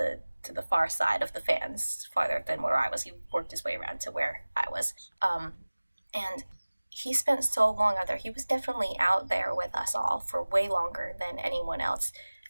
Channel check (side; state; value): both; inverted; correlation -1.00